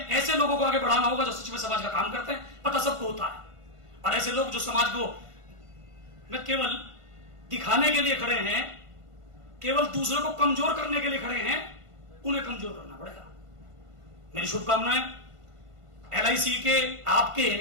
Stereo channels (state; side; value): late; left; 1.5 ms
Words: लोगों को आगे बढ़ाना होगा जो सच में समाज का काम करते हैं, पता सबको होता है। और ऐसे लोग जो समाज को में केवल दिखाने के लिए खड़े हैं, केवल दूसरे को कमजोर करने के लिए खड़े हैं, उन्हें कमजोर करना पड़ेगा। मेरी शुभकामनाएं एलआईसी के, आपके